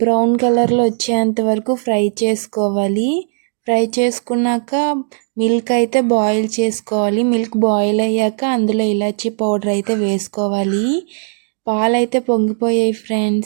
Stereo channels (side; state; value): left; silent; digital silence